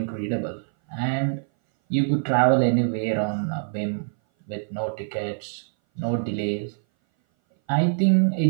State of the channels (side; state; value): left; silent; 59 dB below the other